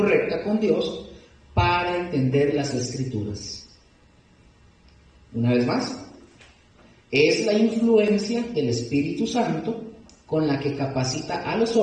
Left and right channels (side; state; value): both; identical; correlation 1.00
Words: con Dios para entender las Escrituras. Una vez más, es la influencia del Espíritu Santo con la que capacita a los